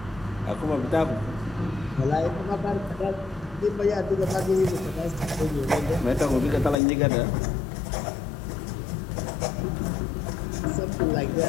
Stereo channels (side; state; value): right; drops out; at 6.8 s